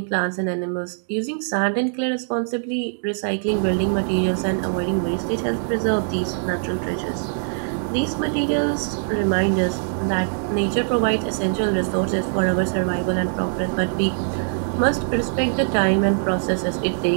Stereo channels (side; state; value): left; silent; digital silence